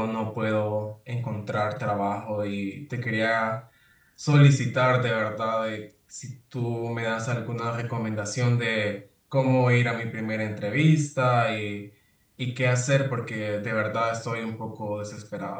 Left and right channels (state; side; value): identical; both; correlation 1.00